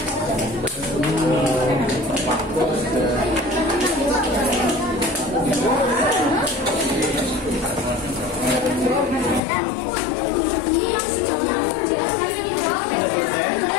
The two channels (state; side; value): drops out; right; at 9.4 s